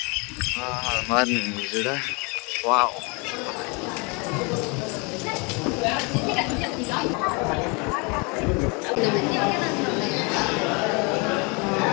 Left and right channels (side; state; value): right; quieter; 30.8 dB